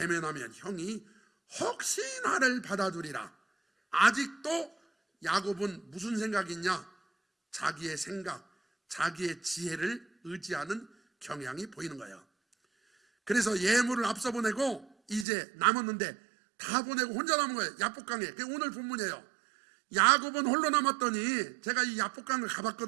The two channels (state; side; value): drops out; left; at 15.2 s